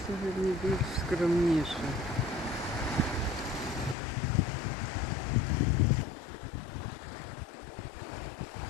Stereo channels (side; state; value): right; drops out; at 4.0 s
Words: сьогодні більш скромніше.